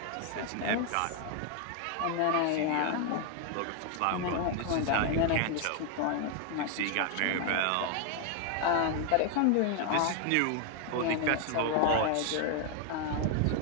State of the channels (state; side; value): different; both; correlation 0.01